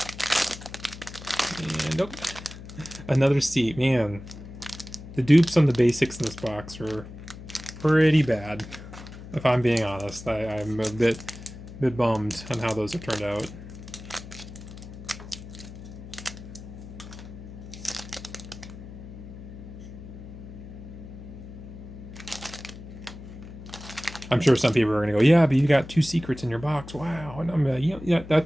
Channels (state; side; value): noise; left; hum, 14 dB below the sound